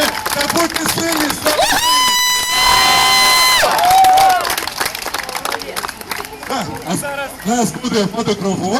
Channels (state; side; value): identical; both; correlation 1.00